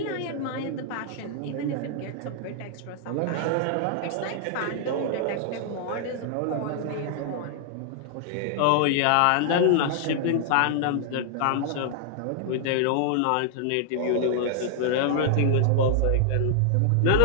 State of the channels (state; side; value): different; both; correlation -0.01